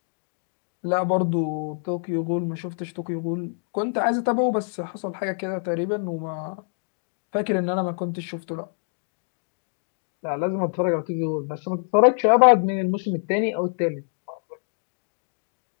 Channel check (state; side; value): silent; right; digital silence